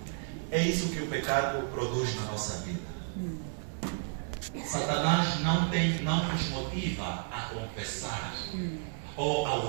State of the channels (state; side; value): silent; left; 56 dB below the other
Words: é isso que o pecado produz na nossa vida. Satanás não nos motiva a confessar ou ao